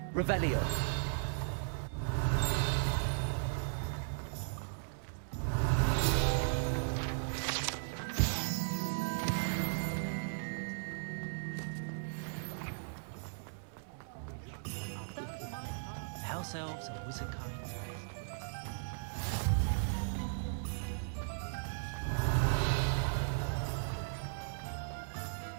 Revelio. House elves and wizard kind.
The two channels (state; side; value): silent; left; digital silence